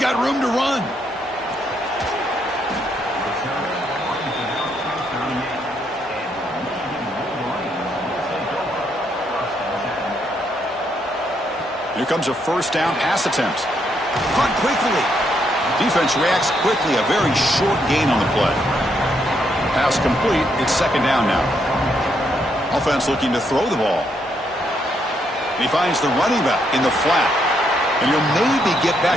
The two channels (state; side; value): normal; both; correlation 0.75